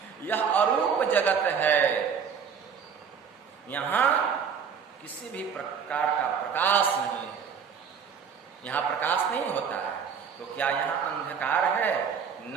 यह अरूप जगत है, यहां किसी भी प्रकार का प्रकाश नहीं है, यहां प्रकाश नहीं होता है। तो क्या यहां अंधकार है?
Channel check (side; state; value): left; quieter; 6.8 dB